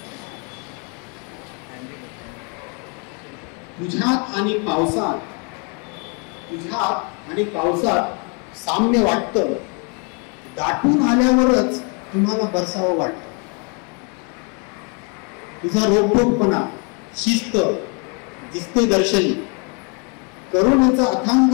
तुझ्यात आणि पावसात, तुझ्यात आणि पावसात साम्य वाटतं, दाटून आल्यावरच तुम्हाला बरसावं वाटतं. तुझा रोखोकपणा, शिस्त दिसते दर्शनी, करुणेचा अथांग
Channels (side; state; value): right; quieter; 35.6 dB